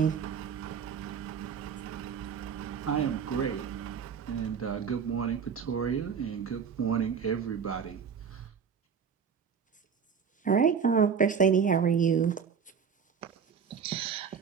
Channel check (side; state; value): left; quieter; 6.7 dB